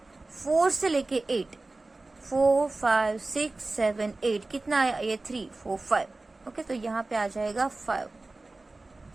4 से लेके 8, 4 5 6 7 8, कितना आया ये 3 4 5। ओके, तो यहाँ पे आ जाएगा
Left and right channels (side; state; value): left; quieter; 3.2 dB